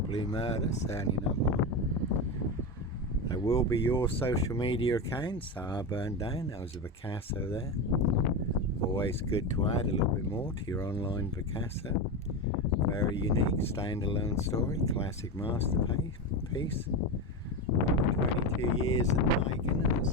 murder, certainly not mine. There will be your social media accounts that are burned down. That was a Picasso there. Always good to add a little bit more to your online Picasso. Very unique standalone story, classic masterpiece. 22 years in the making, and it's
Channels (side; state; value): both; normal; correlation 0.17